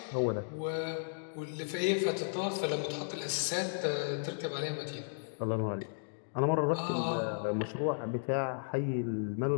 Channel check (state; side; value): silent; right; digital silence